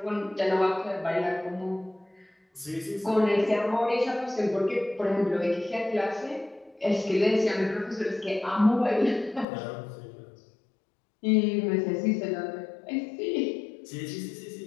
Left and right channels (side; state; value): right; drops out; at 9.5 s